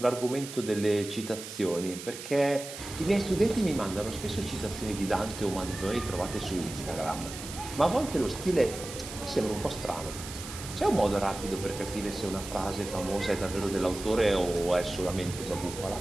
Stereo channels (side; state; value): right; noise; hiss, 11 dB below the sound